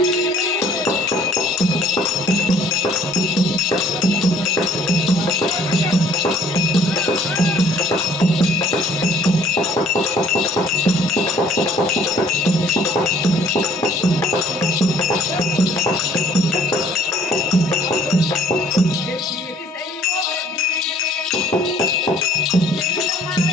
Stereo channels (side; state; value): both; normal; correlation 0.57